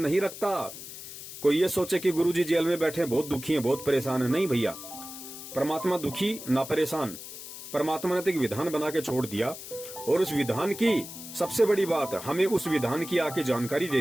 रखता। कोई ये सोचे कि गुरुजी जेल में बैठे बहुत दुखी हैं, बहुत परेशान है, नहीं भैया, परमात्मा दुखी ना परेशान। परमात्मा ने तो एक विधान बना के छोड़ दिया और उस विधान की सबसे बड़ी बात, हमें उस विधान की आके जानकारी दे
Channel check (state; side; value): noise; left; hiss, 12 dB below the sound